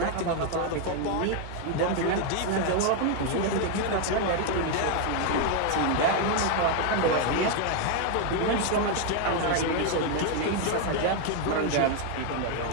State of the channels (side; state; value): both; different; correlation 0.01